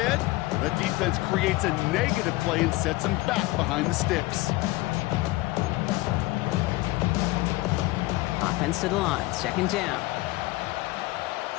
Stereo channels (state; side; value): quieter; right; 19.8 dB